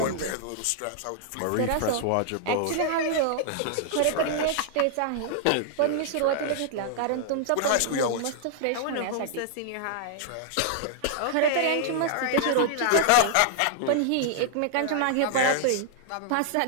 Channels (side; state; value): both; different; correlation -0.01